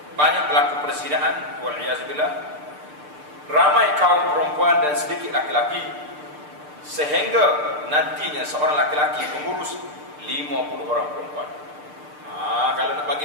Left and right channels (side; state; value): left; late; 6.7 ms